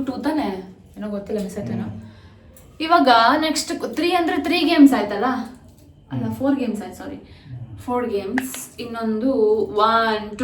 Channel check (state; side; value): identical; both; correlation 1.00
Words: ತಾನೆ? ಏನೋ ಗೊತ್ತಿಲ್ಲ, ಮಿಸ್ ಆಯ್ತೇನೋ. ಇವಾಗ ನೆಕ್ಸ್ಟ್ 3 ಅಂದ್ರೆ 3 ಗೇಮ್ಸ್ ಆಯ್ತಲ್ಲ? ಅಲ್ಲ, 4 ಗೇಮ್ಸ್ ಆಯ್ತು, ಸಾರಿ, 4 ಗೇಮ್ಸ್. ಇನ್ನೊಂದು 1